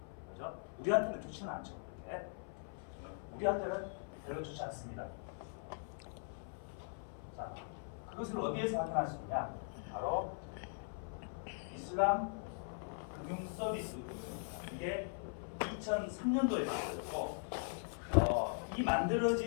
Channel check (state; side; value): silent; right; 51 dB below the other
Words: 그죠? 우리한테는 좋지는 않죠. 그렇게. 우리한테는 별로 좋지 않습니다. 자, 그것을 어디에서 확인할 수 있냐? 바로 이슬람 금융 서비스. 이게 2003년도에 만들어졌고, 이